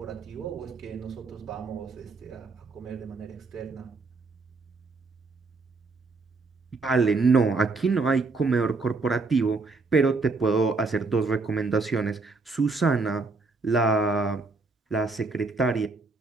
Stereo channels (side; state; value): left; quieter; 3.8 dB